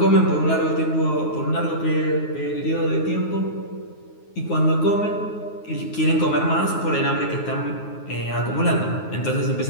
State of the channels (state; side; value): late; right; 9.5 ms